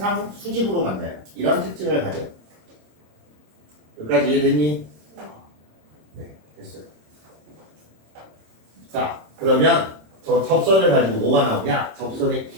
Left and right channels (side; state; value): left; late; 26 ms